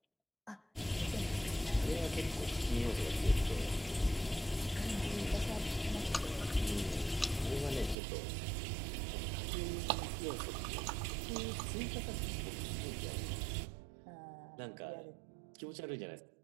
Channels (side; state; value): left; drops out; at 8.0 s